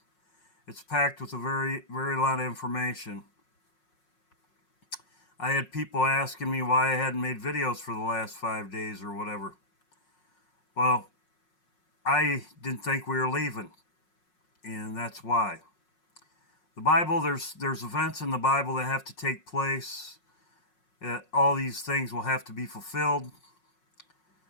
It's packed with a very, very lot of information. I had people asking me why I hadn't made videos for the last 5 days or whatever. Well, I didn't think we were leaving, and that's why. The Bible, there's events in the Bible that have to take place. All these things will have to be fulfilled.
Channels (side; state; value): right; late; 5.5 ms